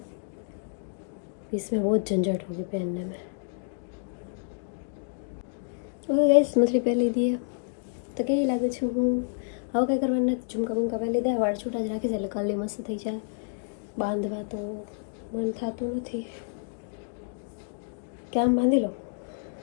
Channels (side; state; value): right; silent; digital silence